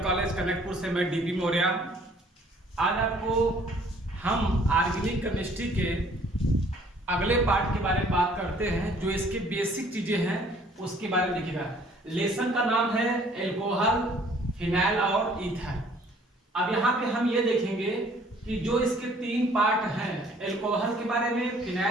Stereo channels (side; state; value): both; normal; correlation 0.58